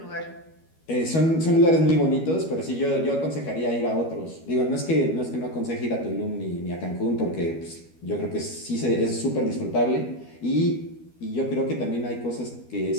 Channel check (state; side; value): late; right; 12 ms